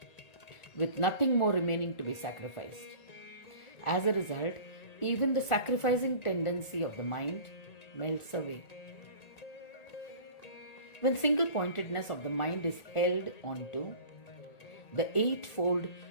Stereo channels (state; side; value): late; right; 1.5 ms